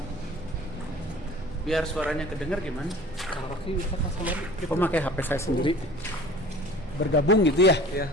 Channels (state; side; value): normal; both; correlation 0.44